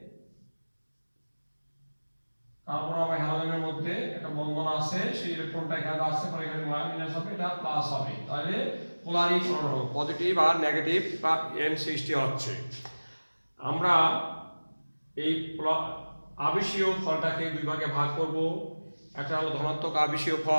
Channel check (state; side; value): inverted; both; correlation -1.00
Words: কার্বন আর হ্যালোজেনের মধ্যে একটা বন্ধন আছে, সেই ইলেকট্রনটা এখানে আসছে, পরে এখানে মাইনাস হবে, এটা প্লাস হবে, তাহলে পোলারীকরণ হবে, পজিটিভ আর নেগেটিভ এন সৃষ্টি হচ্ছে। আমরা এই আবেশীয় ফলটাকে দুই ভাগে ভাগ করব, একটা হলো ধনাত্মক আবেশীয়